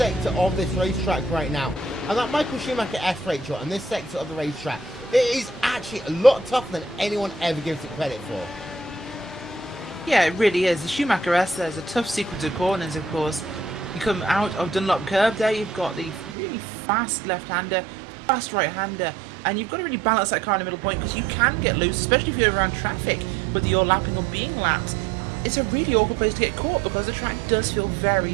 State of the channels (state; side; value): drops out; left; at 16.4 s